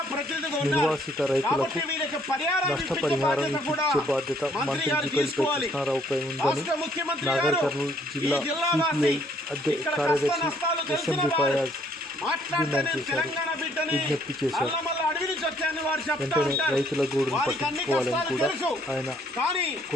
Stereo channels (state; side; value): normal; both; correlation 0.65